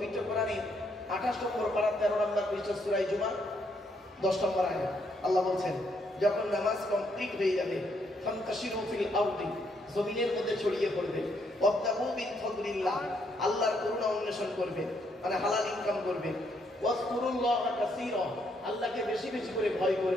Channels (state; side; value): normal; both; correlation 0.74